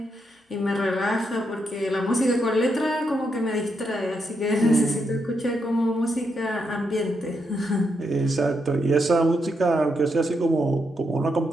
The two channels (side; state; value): both; normal; correlation 0.81